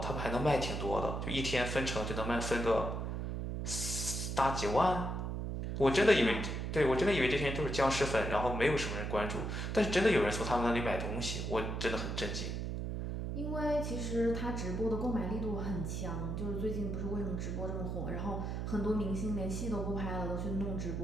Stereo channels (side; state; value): right; noise; hum, 3 dB below the sound